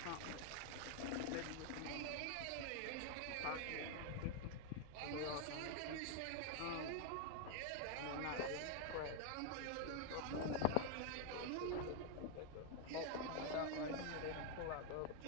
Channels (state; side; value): different; both; correlation 0.00